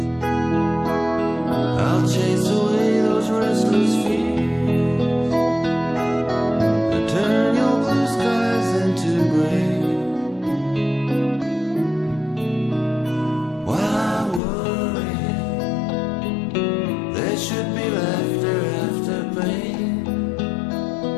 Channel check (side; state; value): right; drops out; at 14.4 s